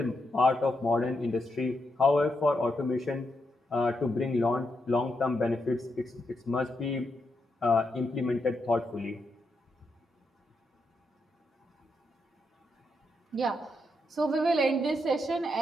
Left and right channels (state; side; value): normal; both; correlation 0.82